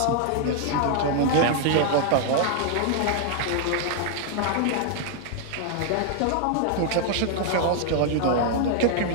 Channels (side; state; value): both; different; correlation 0.00